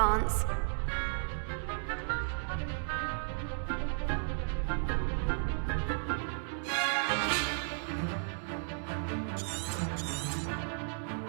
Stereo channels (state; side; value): silent; left; 55 dB below the other